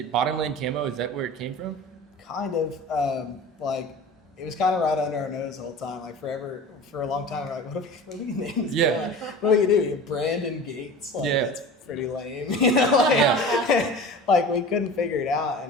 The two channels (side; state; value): both; normal; correlation 0.37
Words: Bottomland Camo? Is that where it came from? Kind of. It was kind of right under our nose the whole time. For a long time, we're like, what do we name this? Yeah. What do you do? Brandon Gates? That's pretty lame. We couldn't figure it out,